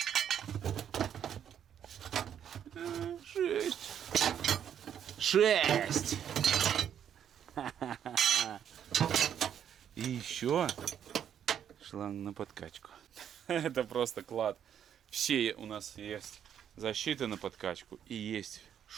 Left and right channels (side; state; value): left; quieter; 9.2 dB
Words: 6. И еще шланг на подкачку. Это просто клад. Все у нас есть защиты на подкачку и есть